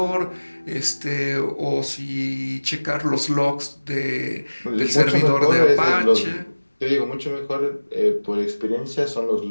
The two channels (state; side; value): inverted; both; correlation -1.00